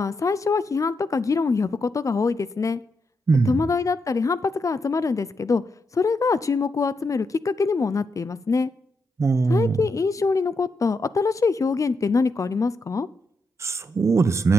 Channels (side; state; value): both; normal; correlation 0.82